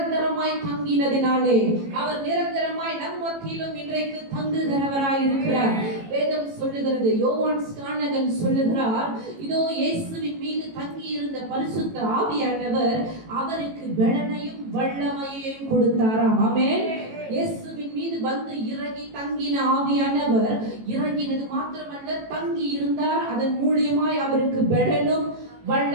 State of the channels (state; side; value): late; left; 18 ms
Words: தங்கினதினாலே, அவர் நிரந்தரமாய் நம் மத்தியிலும் இன்றைக்கு தங்குகிறவராய் இருக்கிறார். வேதம் சொல்லுகிறது, யோவான் ஸ்நானகன் சொல்லுகிறார், இதோ இயேசுவின் மீது தங்கி இருந்த பரிசுத்த ஆவியானவர் அவருக்கு பெலனையும் வல்லமையையும் கொடுத்தாராம். ஆமென். இயேசுவின் மீது வந்து இறங்கி தங்கின ஆவியானவர் இறங்கினது மாத்திரமல்ல, தங்கி இருந்தார். அதன் மூலியமாய் அவருக்கு பெலனும்